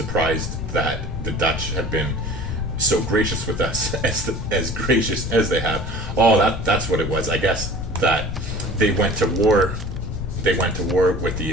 that the Dutch have been so gracious with us, as gracious as they have. Oh, that's what it was. I guess that they went to war. They went to war with the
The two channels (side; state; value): left; noise; rumble, 6 dB below the sound